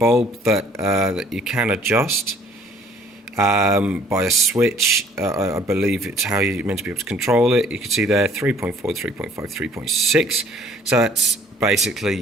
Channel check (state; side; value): normal; both; correlation 0.58